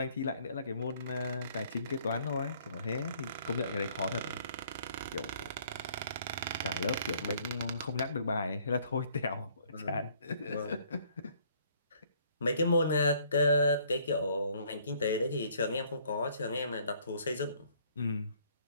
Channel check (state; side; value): inverted; both; correlation -0.62